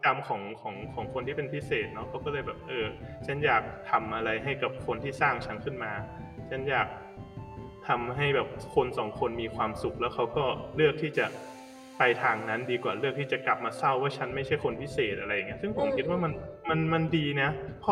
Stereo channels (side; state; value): both; identical; correlation 1.00